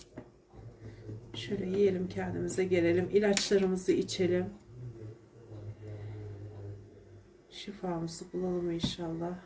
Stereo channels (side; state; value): both; identical; correlation 1.00